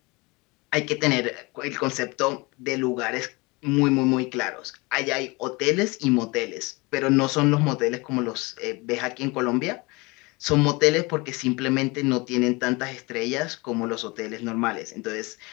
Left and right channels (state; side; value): quieter; right; 25.5 dB